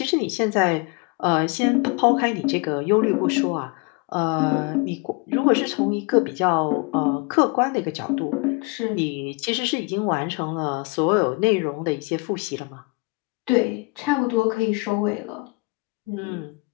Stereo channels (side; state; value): right; quieter; 29.2 dB